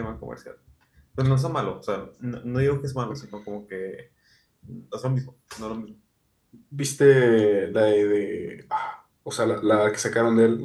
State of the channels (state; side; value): identical; both; correlation 1.00